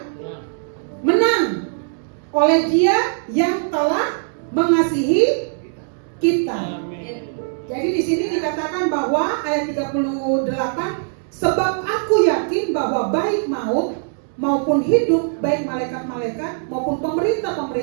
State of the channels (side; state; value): left; silent; 65 dB below the other